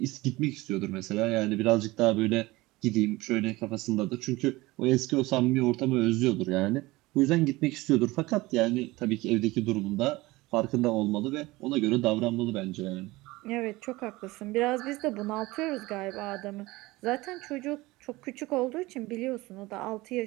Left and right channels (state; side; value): quieter; left; 20.5 dB